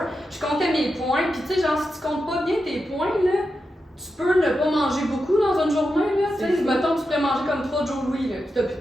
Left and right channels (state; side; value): normal; both; correlation 0.88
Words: Je comptais mes points, puis tu sais, genre, si tu comptes pas bien tes points, là, tu peux ne pas manger beaucoup dans une journée, là. Tu sais, mettons, tu pourrais manger comme 3 Joe Louis, là, puis t'as plus